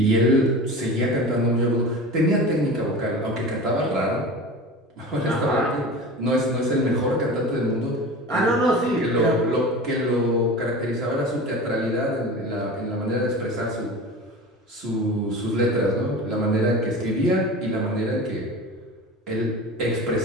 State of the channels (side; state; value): both; normal; correlation 0.34